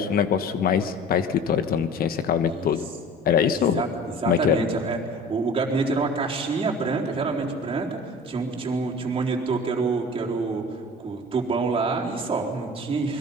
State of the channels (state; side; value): normal; both; correlation 0.41